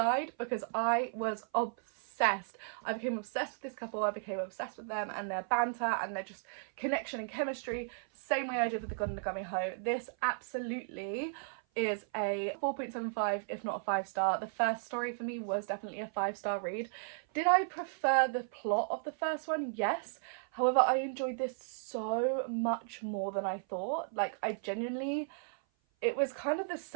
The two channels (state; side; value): silent; left; 54 dB below the other